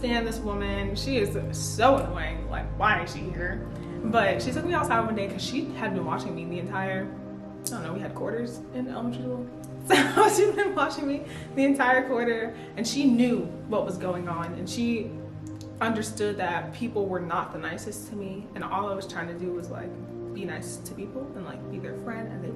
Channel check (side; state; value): both; identical; correlation 1.00